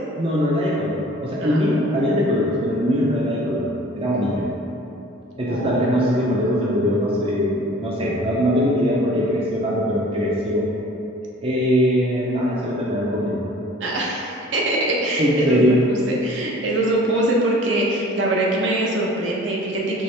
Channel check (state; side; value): normal; both; correlation 0.49